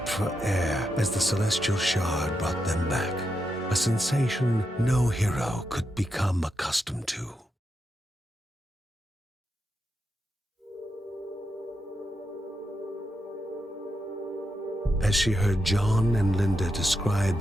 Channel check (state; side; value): normal; both; correlation 0.85